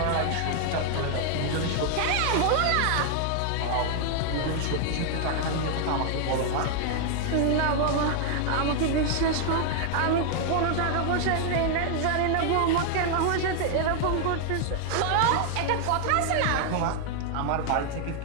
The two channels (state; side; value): different; both; correlation 0.00